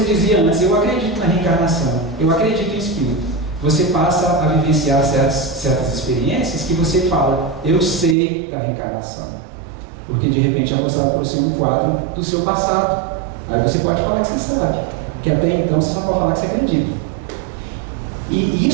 dizia antes, eu acredito na reencarnação, eu acredito em espírito. Você passa a vivenciar certas experiências que você fala, eu sei da reencarnação. Porque de repente é mostrado para você um quadro do seu passado. Aí você pode falar que você sabe, que até então você só pode falar que você acredita. E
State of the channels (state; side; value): drops out; left; at 8.2 s